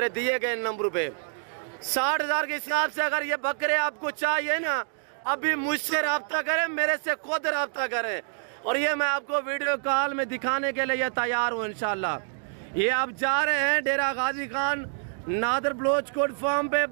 दिए गए नंबर पे। 60,000 के हिसाब से अगर ये बकरे आपको चाहिए ना, अभी मुझसे रब्ता करें, मेरे से खुद रब्ता करें। और ये मैं आपको वीडियो कॉल में दिखाने के लिए तैयार हूँ इंशाल्लाह। ये आप जा रहे हैं डेरा गाजी खान नादर बलोच कोट फार्म पे,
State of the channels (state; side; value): silent; left; digital silence